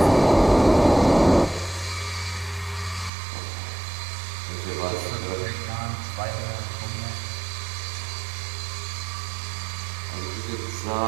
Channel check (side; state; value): left; drops out; at 3.1 s